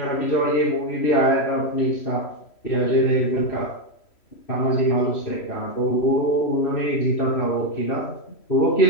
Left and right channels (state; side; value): late; right; 3.1 ms